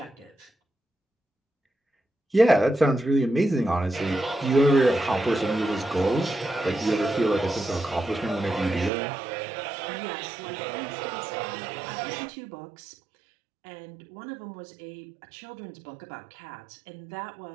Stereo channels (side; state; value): left; drops out; at 8.9 s